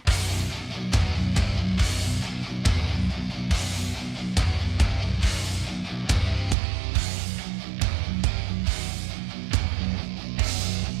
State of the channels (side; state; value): left; drops out; at 6.6 s